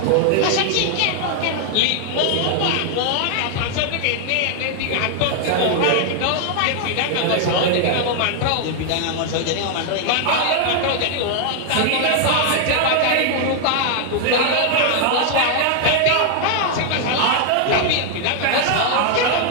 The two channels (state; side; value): different; both; correlation 0.00